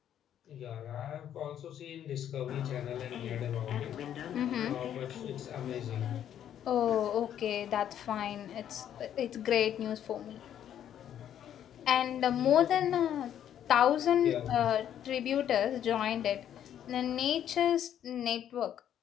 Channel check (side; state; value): right; quieter; 10.2 dB